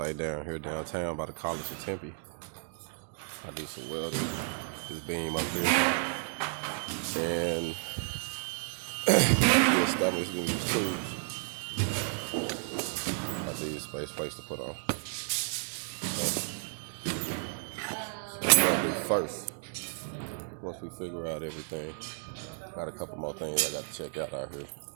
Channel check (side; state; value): left; silent; 55 dB below the other